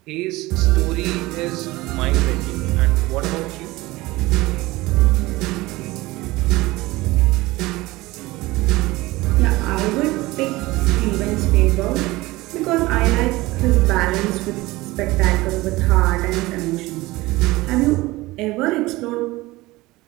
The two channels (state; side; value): quieter; left; 19.9 dB